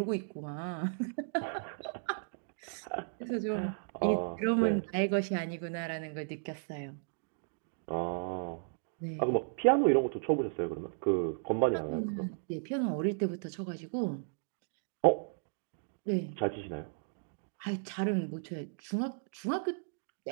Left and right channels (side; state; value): left; silent; digital silence